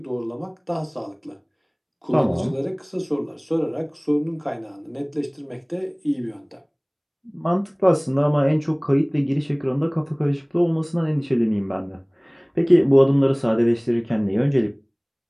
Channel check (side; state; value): both; identical; correlation 1.00